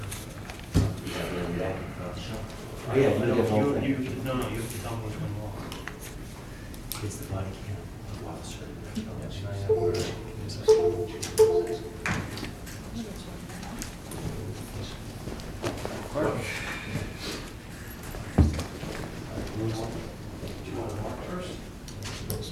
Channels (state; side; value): identical; both; correlation 1.00